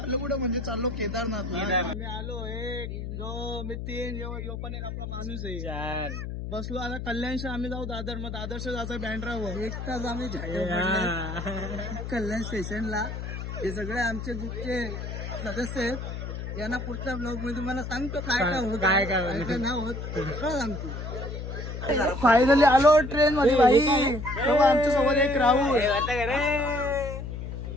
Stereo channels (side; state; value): left; noise; hum, 6 dB below the sound